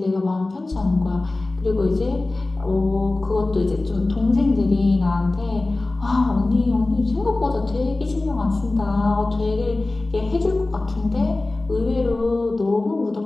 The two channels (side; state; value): right; quieter; 3.0 dB